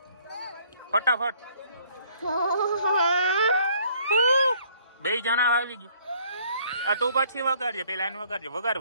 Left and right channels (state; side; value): inverted; both; correlation -0.61